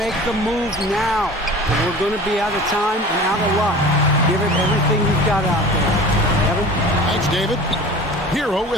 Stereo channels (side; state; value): both; normal; correlation 0.39